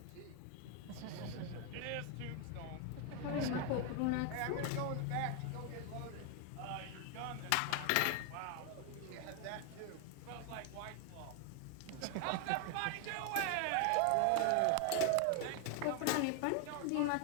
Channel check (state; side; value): different; both; correlation 0.00